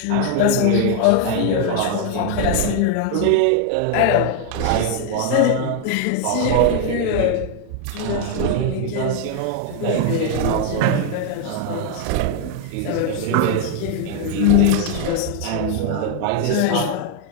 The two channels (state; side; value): different; both; correlation 0.00